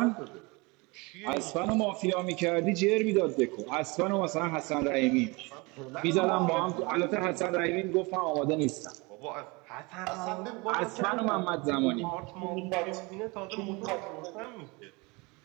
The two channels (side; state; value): left; quieter; 26.7 dB